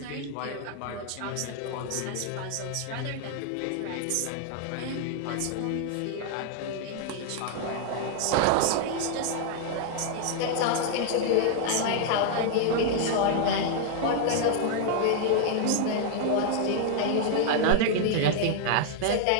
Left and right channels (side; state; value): both; different; correlation 0.00